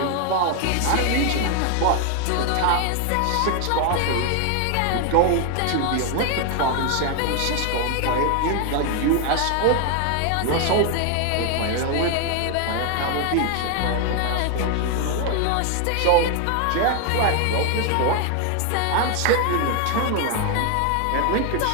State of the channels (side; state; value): both; different; correlation 0.01